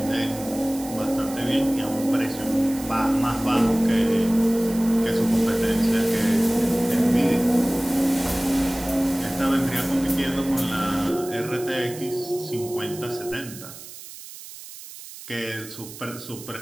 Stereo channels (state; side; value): noise; right; hiss, 15 dB below the sound